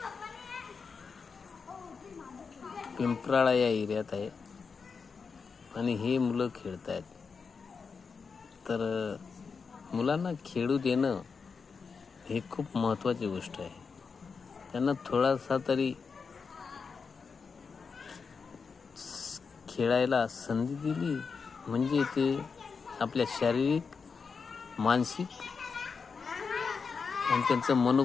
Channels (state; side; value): quieter; right; 5.3 dB